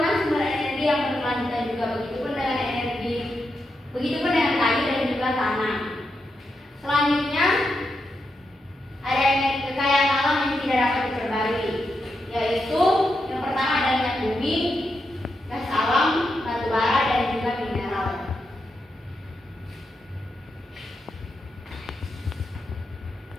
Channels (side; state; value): both; normal; correlation 0.85